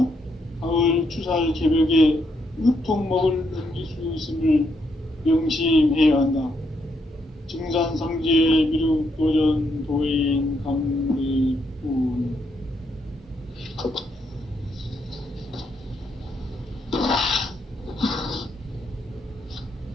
가을 추살 개벽에 으통먹을 넘길 수 있음을 명심해야 한다. 증산상제 미륵도전 도인 강대군.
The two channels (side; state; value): both; normal; correlation 0.77